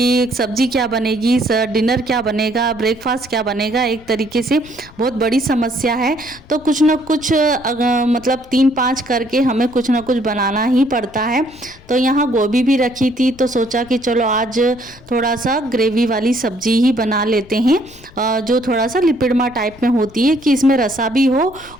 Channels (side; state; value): left; noise; rumble, 23 dB below the sound